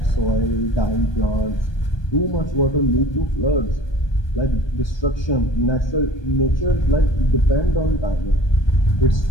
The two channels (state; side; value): late; right; 1.2 ms